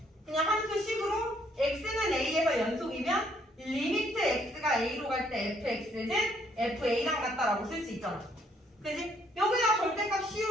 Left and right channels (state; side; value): normal; both; correlation 0.68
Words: 그냥 함수식으로 x는 a에서 연속이면 리미트 x가 a로 갈 때 fx는 fa랑 같다라고 쓸 수 있잖아. 그지? 여기다 절대값